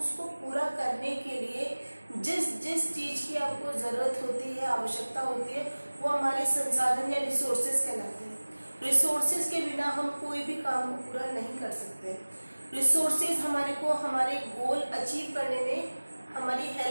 पूरा करने के लिए जिस चीज़ की आपको ज़रूरत होती है, आवश्यकता होती है, वो हमारे संसाधन या रिसोर्सेज कहलाते हैं। रिसोर्सेज के बिना हम कोई भी काम को पूरा नहीं कर सकते। रिसोर्सेज हमारे को हमारे गोल अचीव करने में हमारी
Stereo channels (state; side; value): inverted; both; correlation -1.00